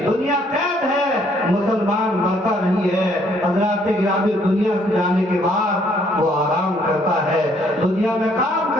دنیا قید ہے مسلمان مرتا نہیں ہے۔ حضرات گرامی دنیا سے جانے کے بعد وہ آرام کرتا ہے، دنیا میں کام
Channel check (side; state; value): both; normal; correlation 0.65